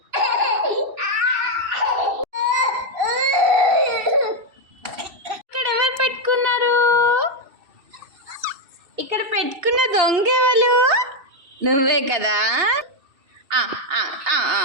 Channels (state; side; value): late; left; 2.7 ms